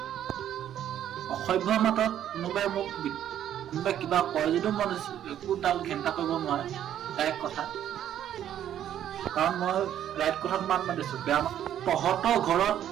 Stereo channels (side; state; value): left; quieter; 10.8 dB